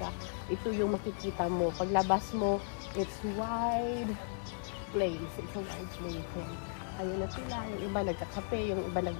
Ito yung makikita mo. Paglabas mo, it's wide place. It's a wide place. Ayun na sila. Yung iba nagkakape, yung iba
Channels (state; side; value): silent; right; 54 dB below the other